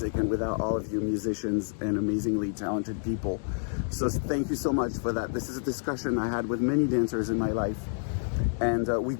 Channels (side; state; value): right; silent; digital silence